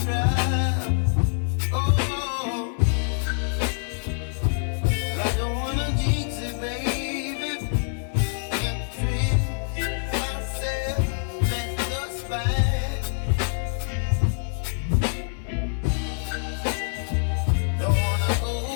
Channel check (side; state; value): right; silent; digital silence